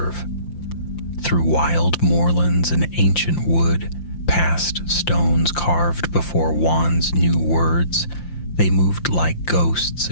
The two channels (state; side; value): late; right; 5.8 ms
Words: Through wild moorlands and ancient wood, past stones carved before wands knew words, they moved like ghosts